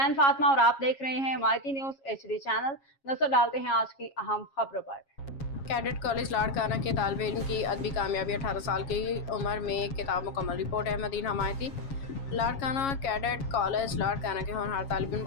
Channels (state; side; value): late; right; 7.3 ms